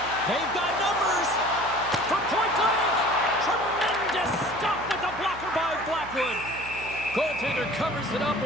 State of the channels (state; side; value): noise; right; hum, 16 dB below the sound